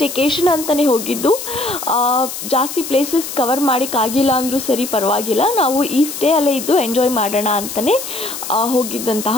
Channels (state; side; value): noise; left; hiss, 8 dB below the sound